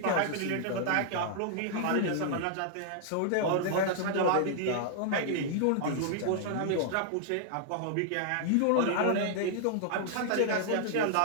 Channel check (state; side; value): different; both; correlation -0.01